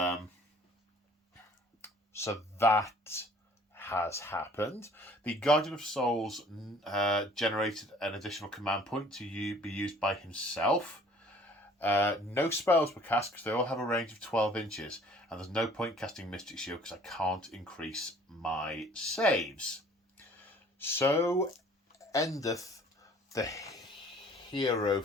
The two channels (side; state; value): both; normal; correlation 0.53